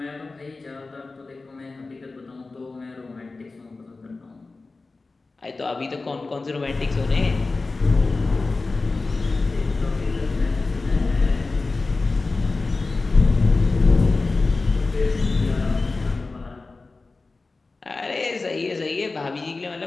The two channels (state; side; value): quieter; right; 3.7 dB